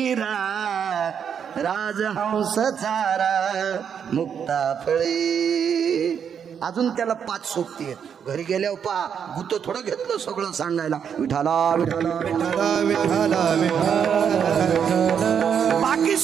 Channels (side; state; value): left; quieter; 7.7 dB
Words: राजहंस चारा मुक्ता फळे. अजून त्याला 5 सोबती आहेत. घरी गेल्यावर पा गुत थोडं घेतलं सगळं सांगायला विठाला विठाला विठाला विठाला विठाला. बाकी